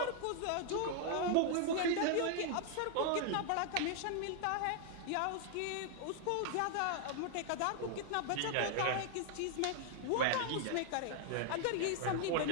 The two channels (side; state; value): both; different; correlation 0.00